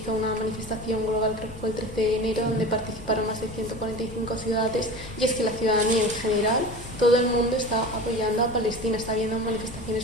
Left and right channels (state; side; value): normal; both; correlation 0.34